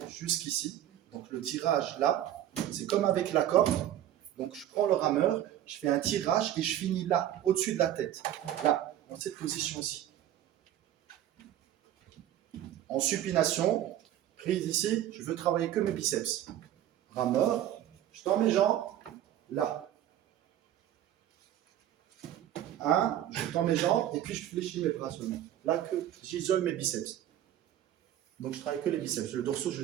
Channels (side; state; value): left; quieter; 11.9 dB